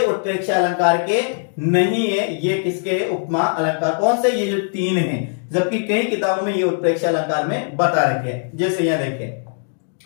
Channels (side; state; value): right; silent; 66 dB below the other